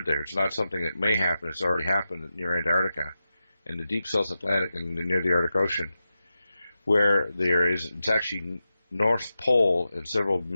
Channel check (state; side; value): inverted; both; correlation -0.91